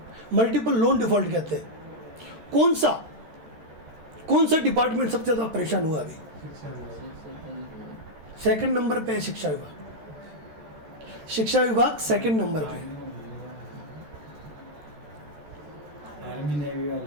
लोन डिफ़ॉल्ट कहते हैं, कौन सा डिपार्टमेंट सबसे ज़्यादा परेशान हुआ अभी? सेकंड नंबर पे है शिक्षा विभाग सेकंड नंबर पे।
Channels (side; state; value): left; late; 13 ms